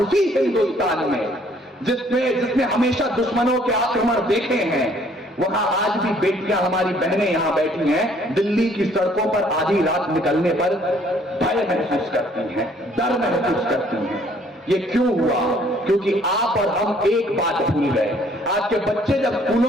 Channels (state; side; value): normal; both; correlation 0.61